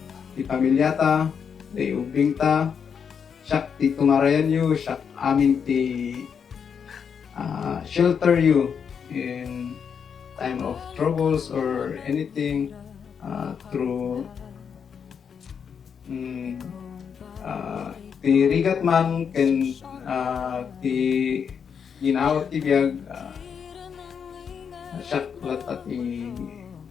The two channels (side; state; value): right; quieter; 7.0 dB